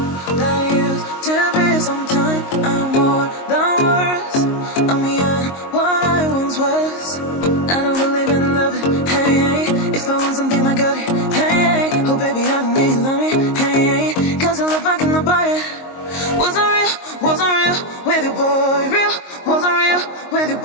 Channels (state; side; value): late; right; 22 ms